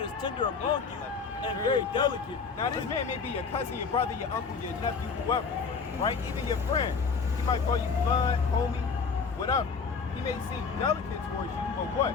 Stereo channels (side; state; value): right; quieter; 5.3 dB